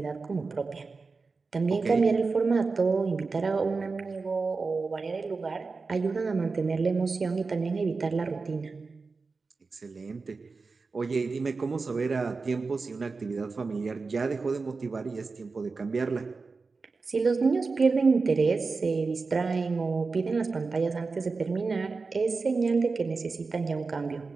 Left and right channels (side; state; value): left; quieter; 4.3 dB